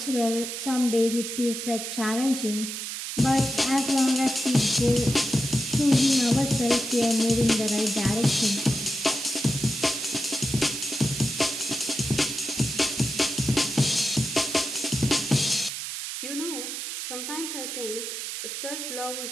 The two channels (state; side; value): noise; right; hiss, 6 dB below the sound